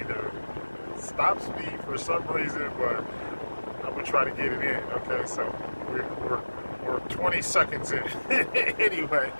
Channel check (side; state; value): both; inverted; correlation -1.00